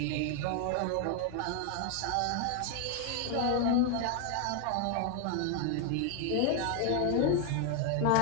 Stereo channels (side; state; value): both; different; correlation 0.01